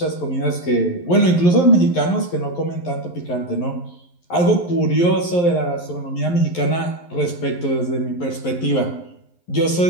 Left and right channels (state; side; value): late; right; 11 ms